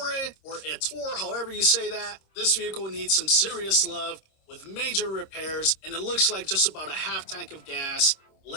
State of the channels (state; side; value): late; right; 26 ms